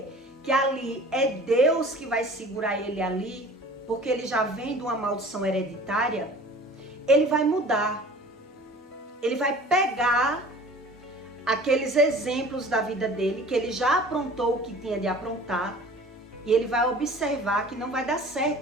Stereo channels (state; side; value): normal; both; correlation 0.44